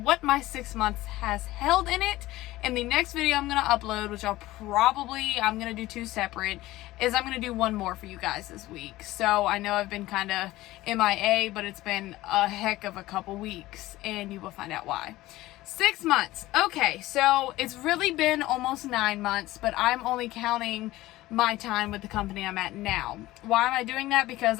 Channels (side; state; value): right; quieter; 17.2 dB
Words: my 6 months has held in it. And the next video I'm going to upload, which I'm going to do two separate, is I'm going to do one more for you guys this week. So I know I've been kind of MIA, but it's been a heck of a couple weeks, and you will find out why. 6 months. Okay, so it's really been almost 9 months, but I'm only counting my time with the company I'm at now. Why am I doing that? Because